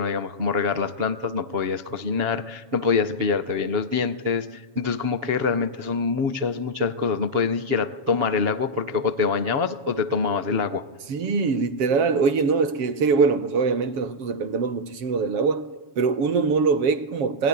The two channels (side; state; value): left; late; 7.2 ms